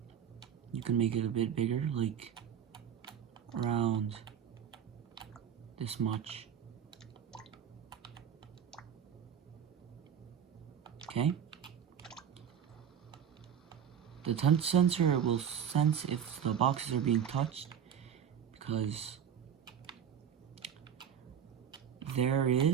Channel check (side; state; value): left; quieter; 8.3 dB